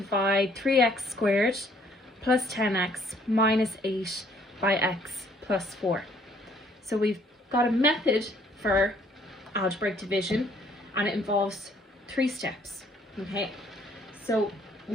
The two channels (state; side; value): normal; both; correlation 0.63